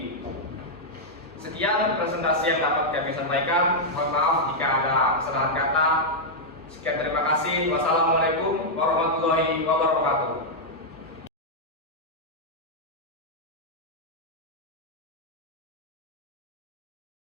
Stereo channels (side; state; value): both; normal; correlation -0.05